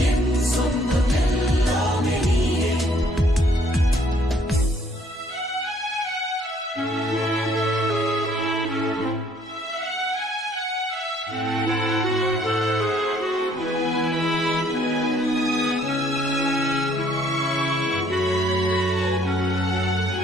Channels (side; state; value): both; normal; correlation 0.63